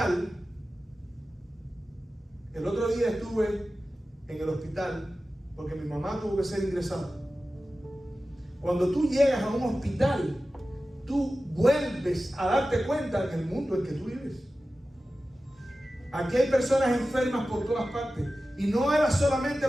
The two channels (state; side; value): normal; both; correlation 0.95